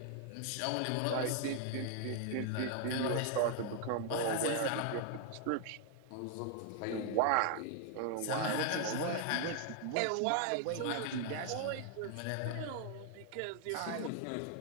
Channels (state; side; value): different; both; correlation 0.00